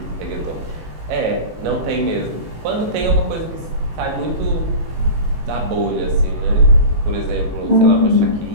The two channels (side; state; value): left; late; 18 ms